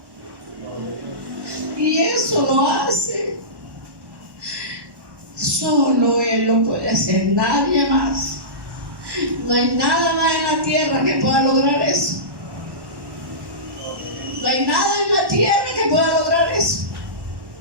Y eso lo hace solo Él lo puede hacer, nadie más. No hay nada más en la tierra que pueda lograr eso. No hay nada en la tierra que pueda lograr eso.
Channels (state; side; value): late; left; 1.1 ms